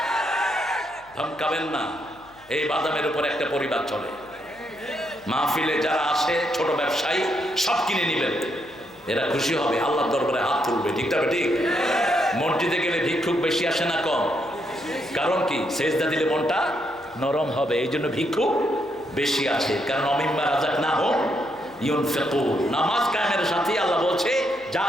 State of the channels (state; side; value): noise; left; hum, 29 dB below the sound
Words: ধমকাবেন না। এই বাদামের উপর একটা পরিবার চলে। মাহফিলে যারা আসে ছোট ব্যবসায়ী সব কিনে নিবেন, এরা খুশি হবে, আল্লাহর দরবারে হাত তুলবে, ঠিক তবে ঠিক। মসজিদে গেলে ভিক্ষুক বেশি আসে না কম? কারণ কি? সেজদা দিলে মনটা নরম হবে, এই জন্য ভিক্ষুক বেশি আসে। কারণ অমিম্মা রাজাক না হোক ইউনফিকুন, নামাজ কায়েমের সাথে আল্লাহ বলছে যা